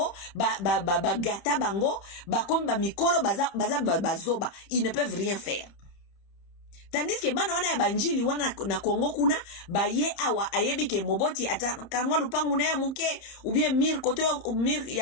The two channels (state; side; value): late; right; 31 ms